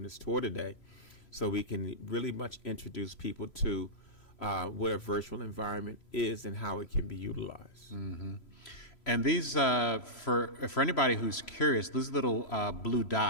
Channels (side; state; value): right; late; 3.0 ms